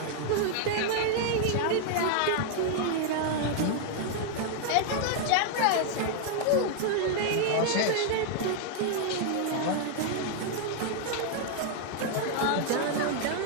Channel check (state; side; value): different; both; correlation 0.00